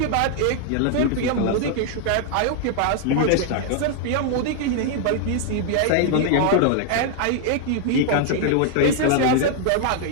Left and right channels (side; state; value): both; different; correlation 0.00